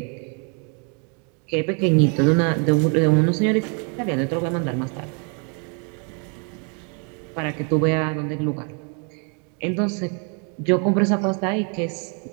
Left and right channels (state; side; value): quieter; left; 37.6 dB